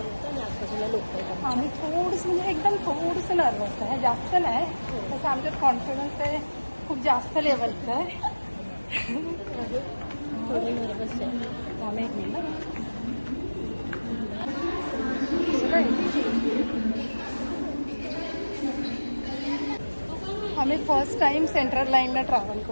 आणि आजपासून लोक आहेत. आम्ही थोडंसं म्हणजे एकदम थोडंसं नर्वस आहे, जास्त नाही. तसं आमच्यात कॉन्फिडन्स आहे खूप जास्त लेवलचं आहे. थोडे नर्वस आहे. आम्ही एक मिनिट आम्ही फर्स्ट टाइम सेंट्रल लाईनला ट्रॅव्हल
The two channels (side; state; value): both; inverted; correlation -1.00